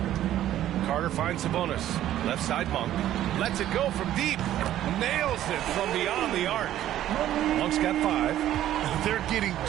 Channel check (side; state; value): left; quieter; 12.5 dB